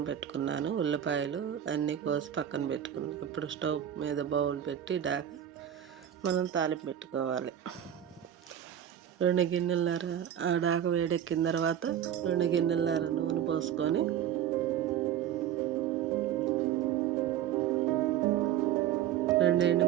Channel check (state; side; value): quieter; left; 10.3 dB